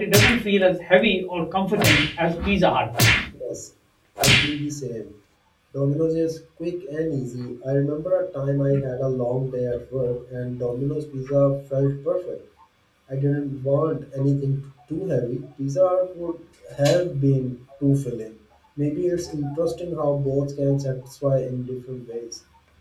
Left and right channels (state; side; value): identical; both; correlation 1.00